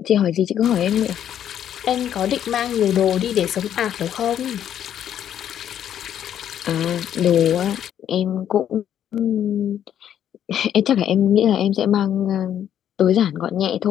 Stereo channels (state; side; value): quieter; right; 10.1 dB